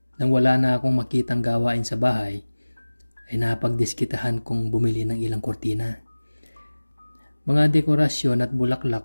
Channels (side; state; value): both; inverted; correlation -1.00